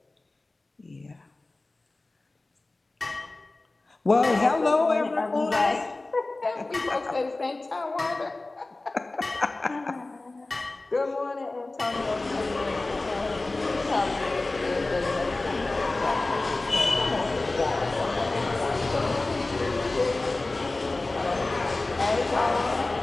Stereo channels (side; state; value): right; quieter; 3.1 dB